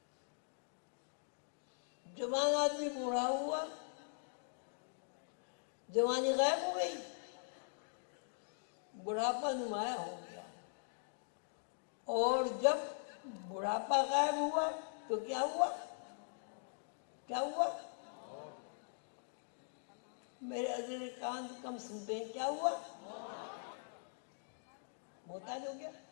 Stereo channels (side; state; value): right; silent; digital silence